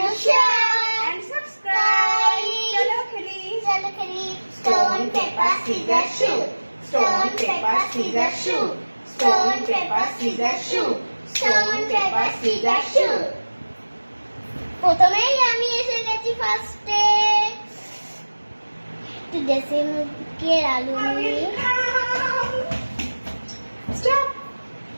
share and subscribe. চলো খেলি। চলো খেলি। Stone paper scissor shoot. Stone paper scissor shoot. Stone paper scissor shoot. Stone paper scissor shoot. প্রথমেই আমি এসে গেছি ফার্স্টে। একটু দেশে মুখের আলু নিয়ে। Stop.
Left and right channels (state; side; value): inverted; both; correlation -1.00